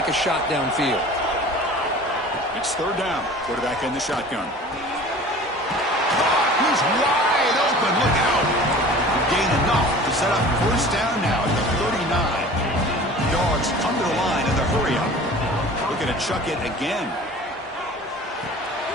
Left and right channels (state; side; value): normal; both; correlation 0.42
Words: a shot downfield. It's third down. Quarterback in the shotgun. He's wide open. Look out. Gain enough to set up first down now at the 39. Dogs come to the line in the hurry up. Looking to chuck it again.